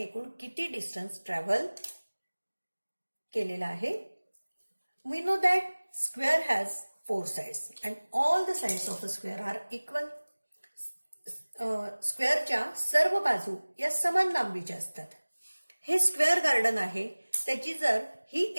एकूण किती डिस्टन्स ट्रॅव्हल केलेला आहे? We know that square has 4 sides and all the sides of a square are equal. स्क्वेअरच्या सर्व बाजू या समान लांबीच्या असतात. हे स्क्वेअर गार्डन आहे. त्याची जर ही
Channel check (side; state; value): both; inverted; correlation -1.00